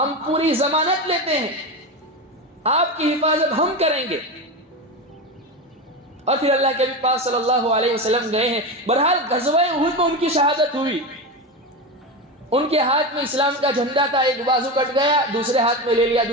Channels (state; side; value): normal; both; correlation 0.19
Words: پوری ضمانت لیتے ہیں، آپ کی حفاظت ہم کریں گے۔ اور پھر اللہ کے نبی پاک صلی اللہ علیہ وسلم گئے ہیں۔ بہرحال غزوہ احد میں ان کی شہادت ہوئی، ان کے ہاتھ میں اسلام کا جھنڈا تھا، ایک بازو کٹ گیا، دوسرے ہاتھ میں لے لیا،